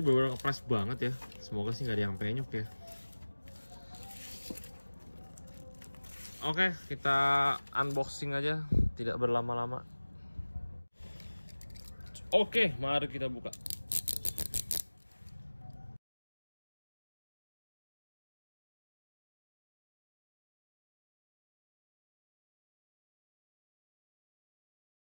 bener-bener kepres banget ya. Semoga sih nggak ada yang penyok ya. Oke, kita unboxing aja, tidak berlama-lama. Oke, mari kita buka.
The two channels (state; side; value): inverted; both; correlation -1.00